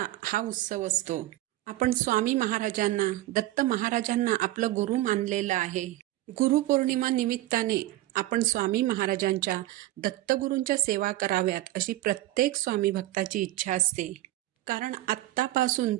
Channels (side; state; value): left; quieter; 16.2 dB